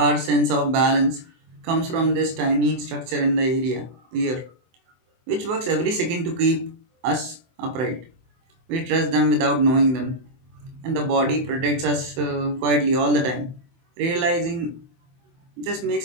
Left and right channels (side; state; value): left; late; 24 ms